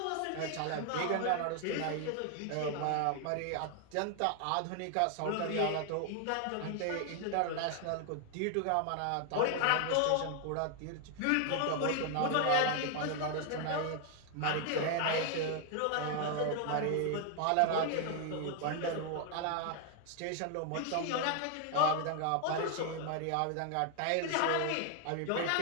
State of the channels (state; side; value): different; both; correlation 0.00